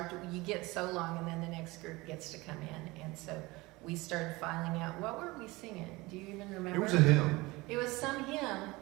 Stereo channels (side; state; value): left; quieter; 22.0 dB